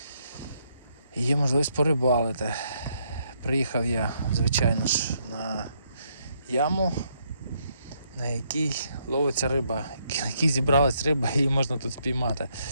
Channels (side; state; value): both; inverted; correlation -0.74